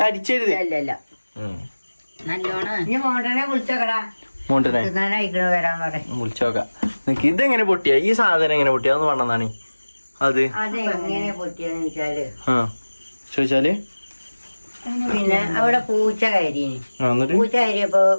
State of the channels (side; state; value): both; inverted; correlation -1.00